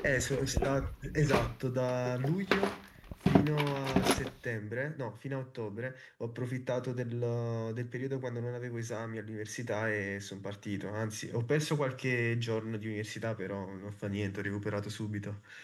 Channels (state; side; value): identical; both; correlation 1.00